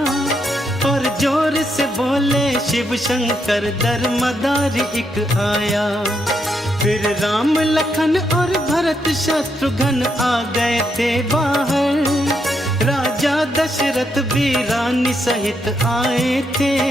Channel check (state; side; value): normal; both; correlation 0.79